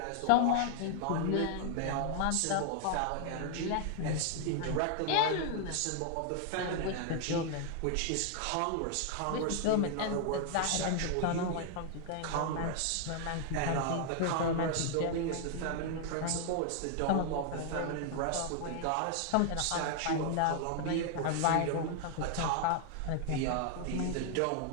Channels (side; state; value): both; different; correlation 0.00